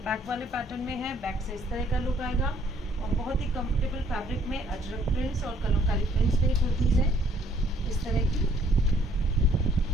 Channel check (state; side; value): normal; both; correlation 0.63